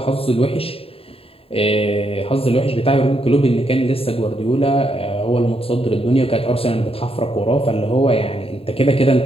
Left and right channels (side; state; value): right; late; 0.27 ms